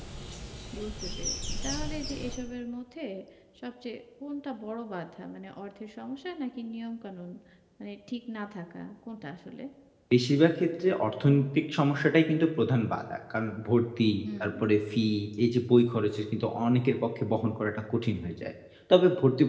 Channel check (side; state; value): both; identical; correlation 1.00